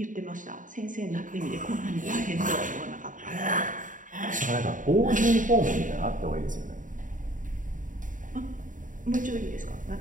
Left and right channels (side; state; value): left; late; 0.38 ms